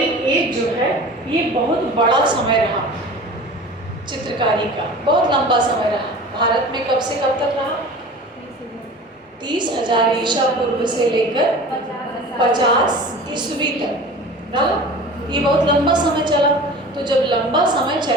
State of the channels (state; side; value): normal; both; correlation 0.39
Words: एज जो है ये बहुत बड़ा समय रहा चित्रकारी का, बहुत लंबा समय रहा। भारत में कब से कब तक रहा? 30,000 ईसा पूर्व से लेकर 50 ईस्वी तक रहा। ये बहुत लंबा समय चला। तो जब लंबा समय